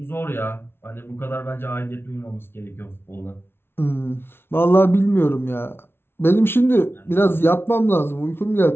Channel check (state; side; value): late; right; 0.11 ms